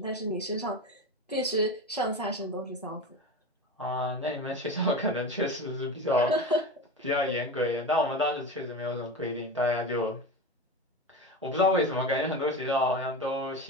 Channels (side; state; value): both; normal; correlation 0.26